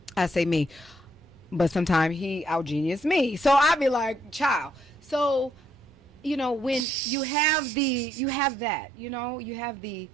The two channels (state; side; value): drops out; left; at 6.9 s